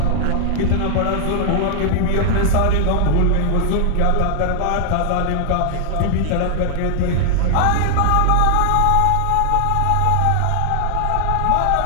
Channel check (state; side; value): different; both; correlation 0.00